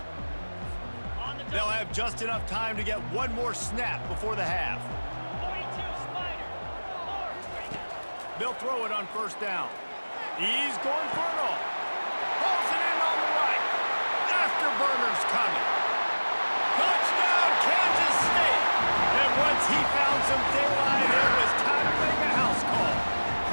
They'll have just enough time to get one more snap before the half. They'll throw it on first down. He's going for it all. Pulls it in on the right. Afterburner's coming. Touchdown, Kansas State. And once he found some daylight, it was time to make a house call.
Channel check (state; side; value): inverted; both; correlation -1.00